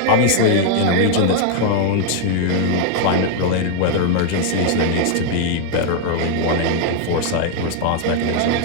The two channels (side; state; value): both; different; correlation 0.00